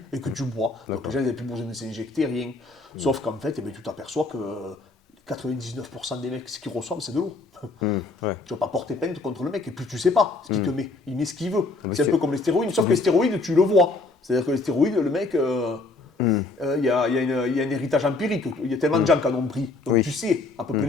et que tu bois. Donc les gens n'avaient plus besoin de s'injecter, rien. Sauf qu'en fait, eh bien, tu t'aperçois que 99% des mecs, ce qu'ils reçoivent, c'est de l'eau. Ouais. Tu vas pas porter plainte contre le mec, et puis tu sais pas ce qu'il te met. Il met ce qu'il veut. mais C'est un c'est- peu comme les stéroïdes, sauf que les stéroïdes, tu le vois. C'est-à-dire que les stéroïdes, le mec, il y a un héritage empirique. Il y a tellement de gens qui en ont pris. Donc Oui. tu sais à peu près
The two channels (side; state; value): right; quieter; 3.4 dB